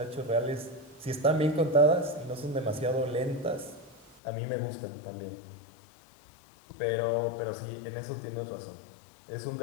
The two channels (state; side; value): drops out; right; at 4.2 s